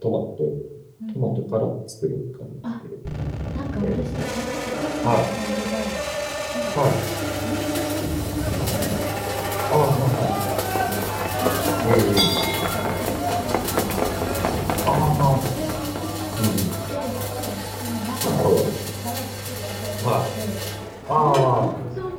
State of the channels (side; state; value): both; identical; correlation 1.00